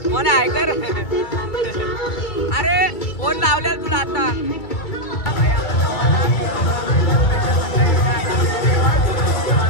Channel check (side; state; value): right; late; 2.2 ms